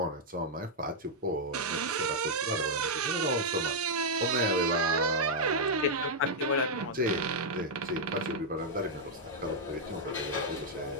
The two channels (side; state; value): both; normal; correlation -0.04